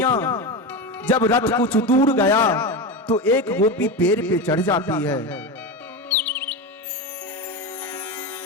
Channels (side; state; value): both; normal; correlation 0.20